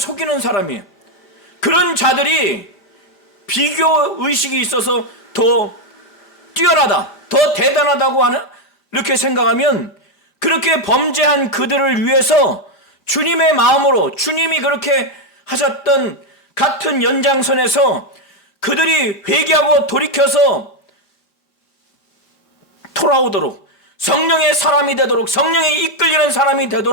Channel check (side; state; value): both; normal; correlation 0.04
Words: 사람이에요. 그런 자들이 비교 의식이 있어서 더 뛰어나다, 더 대단하다고 하는, 이렇게 생각하면 그렇게 범죄한 그들을 위해서 주님의 마음으로, 주님이 그렇게 하셨던 같은 연장선에서 그들이 회개하고 돌이켜서 돌아오도록, 성령의 사람이 되도록, 성령에 이끌리는 사람이